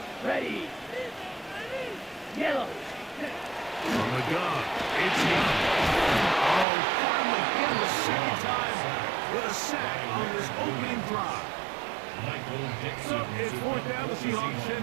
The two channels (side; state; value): left; drops out; at 6.7 s